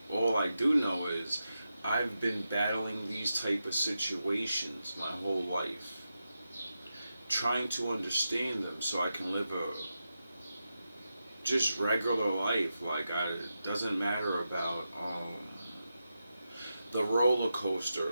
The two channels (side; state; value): both; inverted; correlation -0.89